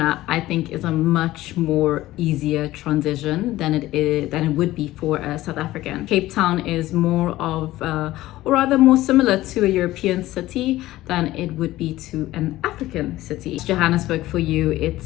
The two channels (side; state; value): right; quieter; 16.3 dB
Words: I think is a much more easier transition than it would be for a South African. Cape Town is more of or rather more similar to a European city than it would be to an African city. Johannesburg for you,